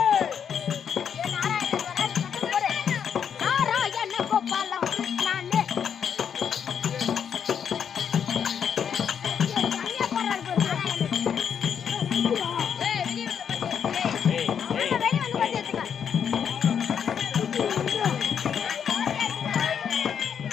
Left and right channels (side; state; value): right; quieter; 7.8 dB